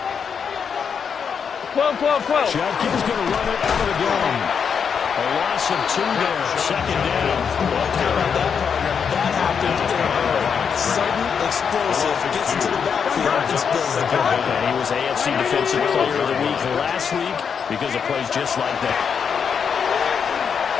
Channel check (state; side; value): quieter; right; 6.8 dB